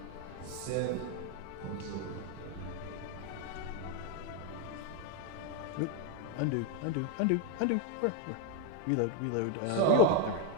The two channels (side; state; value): both; different; correlation 0.02